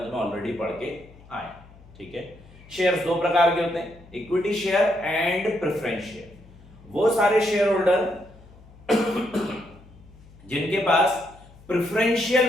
में ऑलरेडी पढ़ के आए। ठीक है, शेयर्स 2 प्रकार के होते हैं, equity share and preference share. वो सारे शेयर होल्डर जिनके पास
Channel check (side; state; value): left; noise; hum, 23 dB below the sound